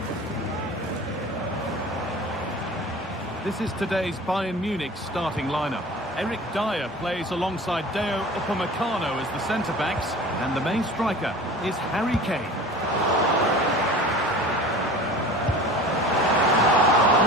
This is today's Bayern Munich starting lineup. Eric Dyer plays alongside Deo Upamecano as the centre-backs, and the main striker is Harry Kane.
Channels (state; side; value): normal; both; correlation 0.39